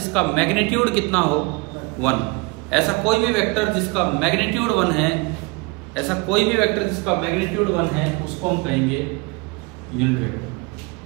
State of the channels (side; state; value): left; quieter; 26.5 dB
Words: मैग्नीट्यूड कितना हो 1। ऐसा कोई भी वेक्टर जिसका मैग्नीट्यूड 1 है, ऐसा कोई भी वेक्टर जिसका मैग्नीट्यूड 1 है उसको हम कहेंगे unit vector.